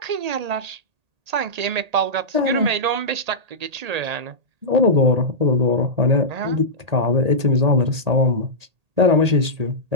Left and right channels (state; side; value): late; left; 1.8 ms